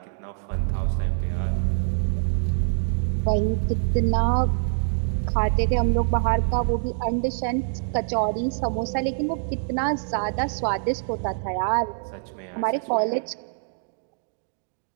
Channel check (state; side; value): silent; left; digital silence